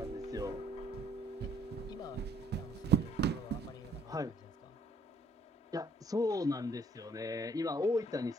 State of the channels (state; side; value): normal; both; correlation 0.65